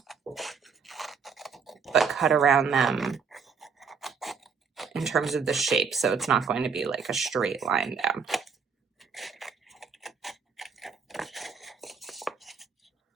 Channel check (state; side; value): quieter; left; 5.9 dB